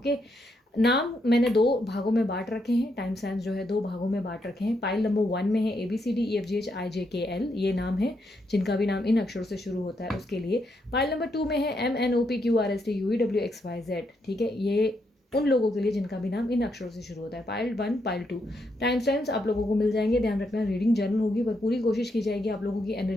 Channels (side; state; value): both; normal; correlation 0.79